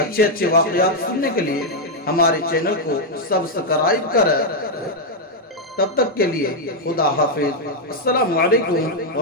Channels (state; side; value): normal; both; correlation 0.00